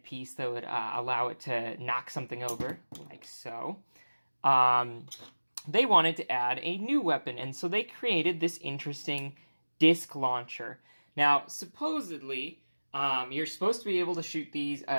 piece that would allow it to knock something over, like so. They wanted to add a new weapon, and so they created this interesting disc launcher. Now, supposedly, you're supposed to be able to shoot these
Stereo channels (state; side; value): inverted; both; correlation -1.00